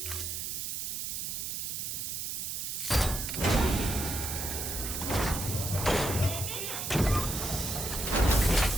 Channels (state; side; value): noise; right; hiss, 3 dB below the sound